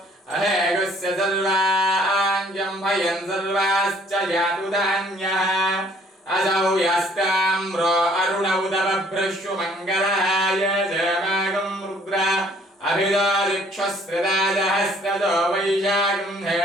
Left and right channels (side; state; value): both; normal; correlation 0.60